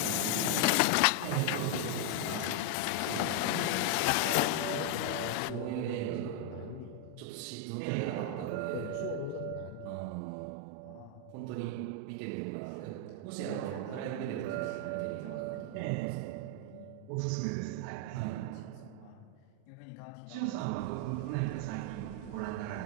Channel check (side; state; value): both; different; correlation 0.00